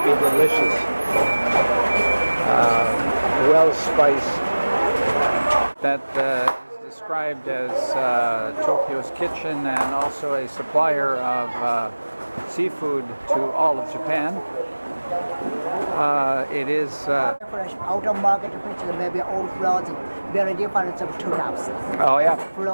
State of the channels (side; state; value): both; inverted; correlation -1.00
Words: be delicious. Well spiced. That is described as Tokyo's kitchen and also a supplier of seafood to all of Japan. It is fresh outer market, which is maybe old frozen, very different from tunas. oh yeah,